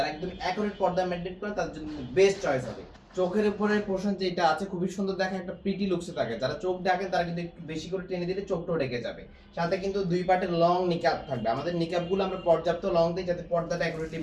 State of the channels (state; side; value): identical; both; correlation 1.00